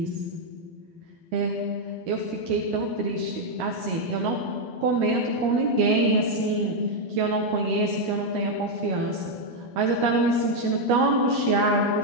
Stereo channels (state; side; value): late; left; 12 ms